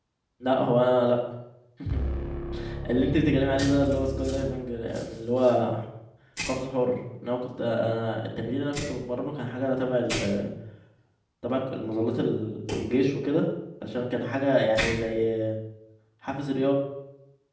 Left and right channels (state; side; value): identical; both; correlation 1.00